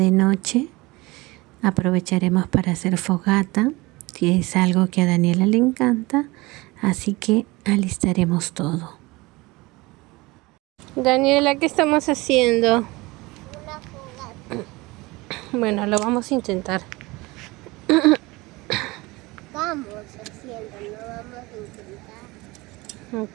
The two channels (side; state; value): left; quieter; 22.5 dB